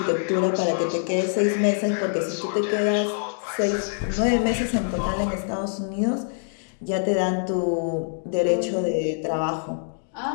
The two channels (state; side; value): silent; right; digital silence